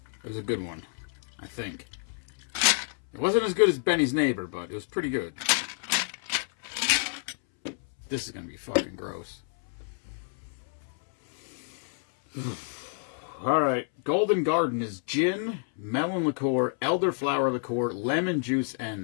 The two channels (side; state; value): right; silent; 59 dB below the other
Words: It was a good one, I think. It wasn't as good as Benny's neighbor, but it was pretty good. This is going to be fucking gross. All right. Golden Garden is gin, melon liqueur, elderflower liqueur, lemon juice,